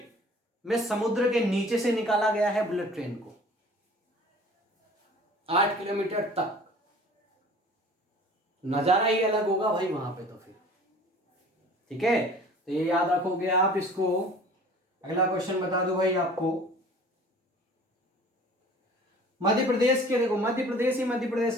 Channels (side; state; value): both; normal; correlation 0.47